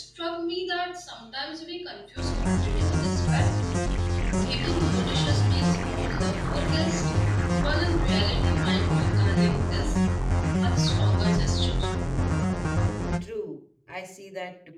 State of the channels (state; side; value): identical; both; correlation 1.00